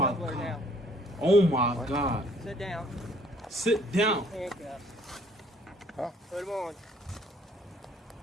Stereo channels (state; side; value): normal; both; correlation 0.60